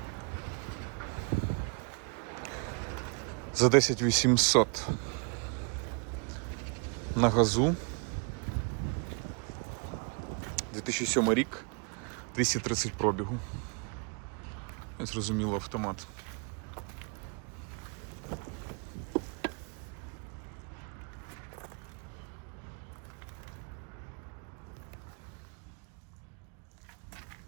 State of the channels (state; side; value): quieter; left; 36.5 dB